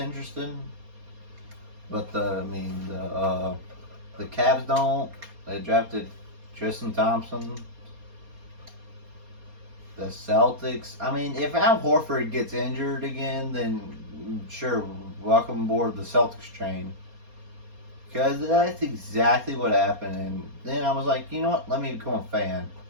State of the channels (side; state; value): left; late; 4.3 ms